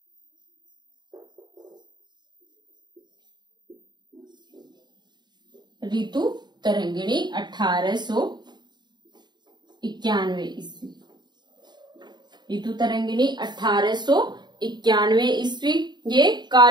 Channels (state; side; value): late; left; 0.21 ms